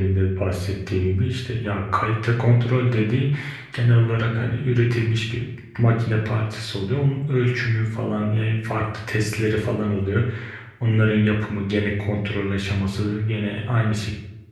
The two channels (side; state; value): both; identical; correlation 1.00